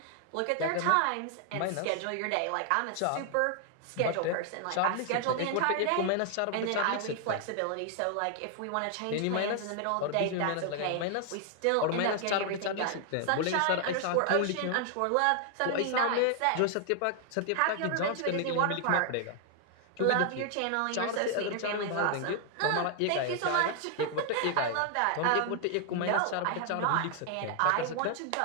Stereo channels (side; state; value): both; different; correlation 0.00